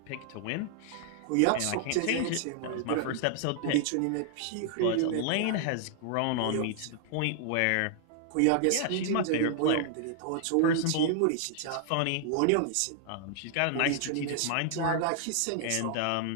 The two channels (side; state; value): both; different; correlation -0.01